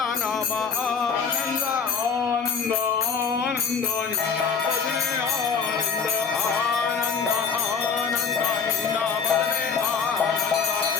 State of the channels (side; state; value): right; quieter; 6.1 dB